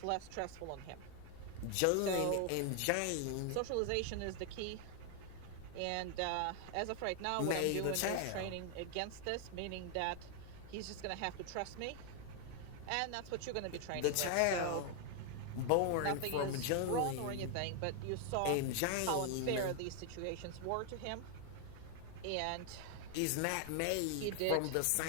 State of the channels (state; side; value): different; both; correlation 0.00